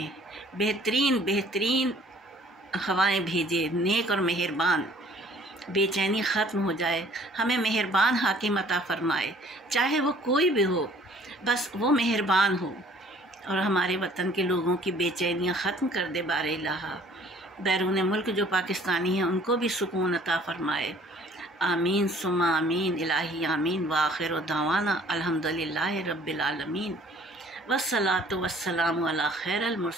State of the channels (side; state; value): both; normal; correlation 0.55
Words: بہترین ہوائیں بھیجے، نیک اور مہربان، بے چینی ختم ہو جائے، ہمیں مہربان حاکم عطا فرمائے، چاہے وہ کوئی بھی ہو، بس وہ مہربان ہو، اور ہمارے وطن کے لوگوں کی بے چینیاں ختم کر دے بار الہ۔ بیرون ملک جو پاکستانی ہیں ان کو بھی سکون عطا فرمائے۔ آمین ثم آمین، الہی آمین۔ وآخر دعوانا الحمدللہ رب العالمین، والصلاۃ والسلام علی خیر